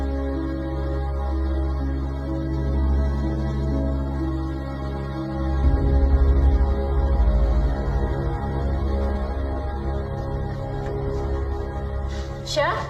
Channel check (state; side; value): identical; both; correlation 1.00